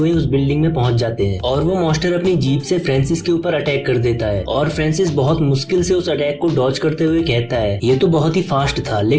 उस बिल्डिंग में पहुंच जाते हैं। और वो मॉन्स्टर अपनी जीप से फ्रांसिस के ऊपर अटैक कर देता है। और फ्रांसिस बहुत मुश्किल से उस अटैक को डॉज करते हुए कहता है ये तो बहुत ही फास्ट था,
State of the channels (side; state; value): both; identical; correlation 1.00